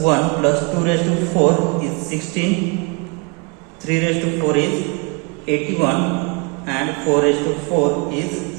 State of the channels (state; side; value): quieter; left; 29.5 dB